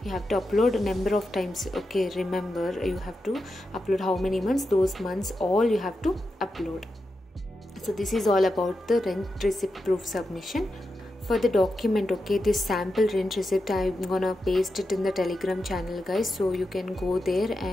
you have to upload a number of times, okay. Remember, you have to upload how many months, those months all you have to upload. So this is all about the rent receipt proof submission. For the document, okay, this sample rent receipt I'm gonna paste it in the Telegram channel, guys. So you can go there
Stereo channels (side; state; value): both; normal; correlation 0.88